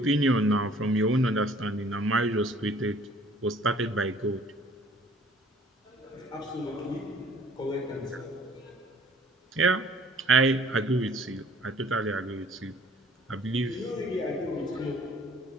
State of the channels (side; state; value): both; normal; correlation 0.55